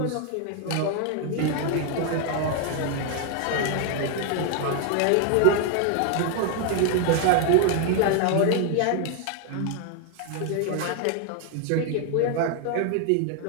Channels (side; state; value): both; different; correlation 0.00